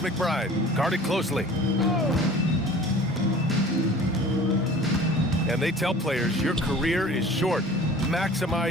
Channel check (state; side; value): normal; both; correlation 0.45